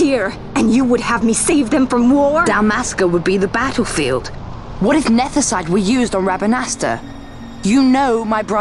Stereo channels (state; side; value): identical; both; correlation 1.00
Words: and you would have me save them from war? Dalmasca would be the battlefield. What if nethicite were used on Rabanasta? You know my